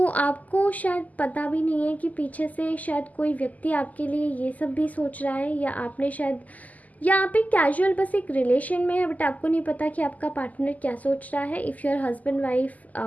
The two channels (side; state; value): right; late; 0.077 ms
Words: आपको शायद पता भी नहीं है कि पीछे से शायद कोई व्यक्ति आपके लिए ये सब भी सोच रहा है, या आपने शायद, या आप एक कैजुअल बस एक रिलेशन में है, बट आपको नहीं पता कि आपका पार्टनर क्या सोच रहा है। इफ़ योर हस्बैंड वाइफ,